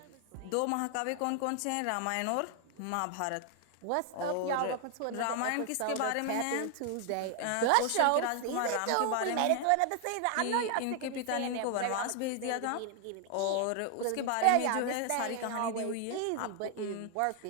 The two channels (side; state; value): both; different; correlation 0.00